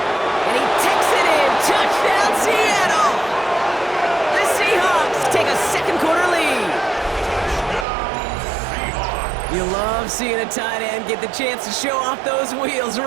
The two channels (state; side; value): drops out; left; at 7.9 s